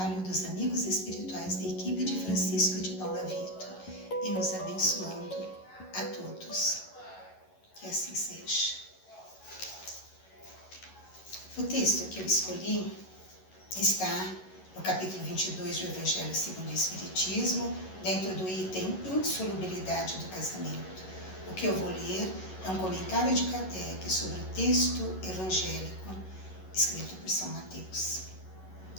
dos amigos espirituais da equipe de Francisco de Paula Vitor e nos abençoando a todos. Que assim seja. O texto que eu escolhi está no capítulo 22 do Evangelho segundo o Espiritismo, dentro do item Insolubilidade do Casamento. O que eu vou ler é um comentário de Kardec sobre o texto evangélico escrito por São Mateus.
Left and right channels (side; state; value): right; late; 11 ms